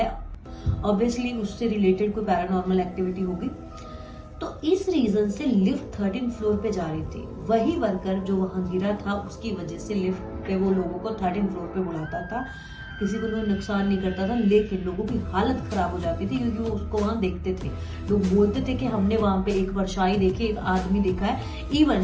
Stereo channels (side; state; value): both; identical; correlation 1.00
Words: ऑब्वियसली उससे रिलेटेड कोई पैरानॉर्मल एक्टिविटी होगी। तो इस रीजन से लिफ्ट 13th फ्लोर पे जा रही थी। वही वर्कर जो वहां गिरा था उसकी वजह से लिफ्ट पे वो लोगों को 13th फ्लोर पे बुलाता था, किसी को कोई नुकसान नहीं करता था, लेकिन लोगों की हालत खराब हो जाती थी क्योंकि वो उसको वहां देखते थे। लोग बोलते थे कि हमने वहां पे एक परछाई देखी, एक आदमी देखा है।